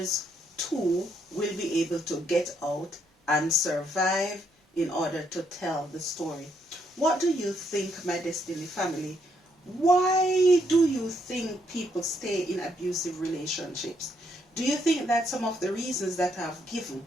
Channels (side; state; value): both; normal; correlation 0.74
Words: too will be able to get out and survive in order to tell the story. What do you think, my Destiny family? Why do you think people stay in abusive relationships? Do you think that some of the reasons that I've given,